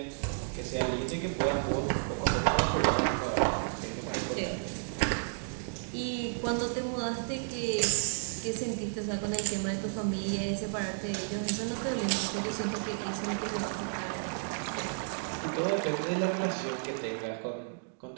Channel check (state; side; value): silent; left; digital silence